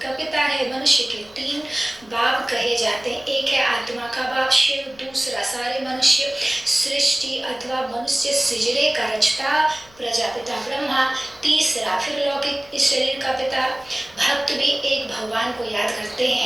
पिता है। मनुष्य के 3 बाप कहे जाते हैं। एक है आत्मा का बाप शिव, दूसरा सारे मनुष्य सृष्टि अथवा मनुष्य सृजने का रचता प्रजापिता ब्रह्मा, तीसरा फिर लौकिक इस शरीर का पिता। भक्त भी एक भगवान को याद करते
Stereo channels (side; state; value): left; noise; rumble, 26 dB below the sound